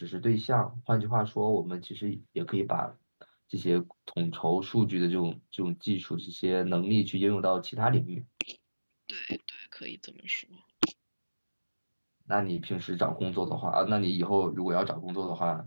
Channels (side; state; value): both; inverted; correlation -1.00